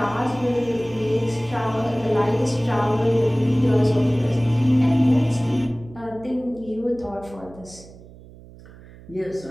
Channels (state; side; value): noise; right; hum, 20 dB below the sound